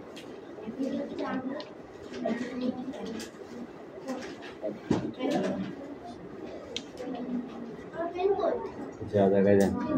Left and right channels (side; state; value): both; identical; correlation 1.00